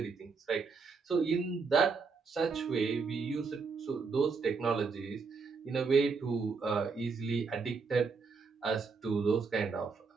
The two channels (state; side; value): quieter; left; 4.9 dB